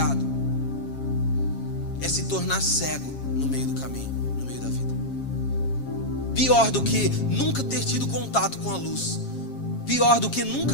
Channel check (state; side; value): late; right; 7.4 ms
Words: é se tornar cego no meio do caminho, no meio da vida. Pior do que nunca ter tido contato com a luz, pior do que